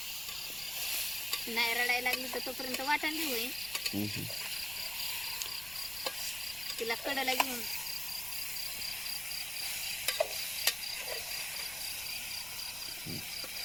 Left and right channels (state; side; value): noise; left; rumble, 19 dB below the sound